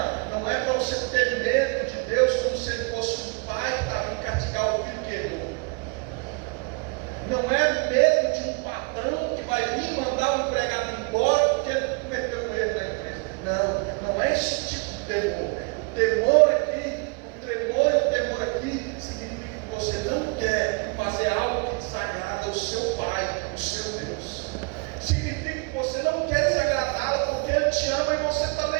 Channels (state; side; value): quieter; left; 32.3 dB